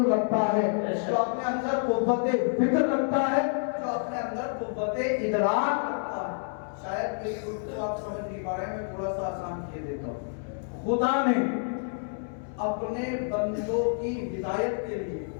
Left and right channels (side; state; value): right; silent; 59 dB below the other